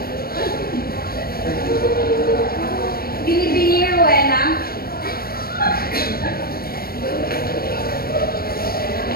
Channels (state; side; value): late; right; 0.44 ms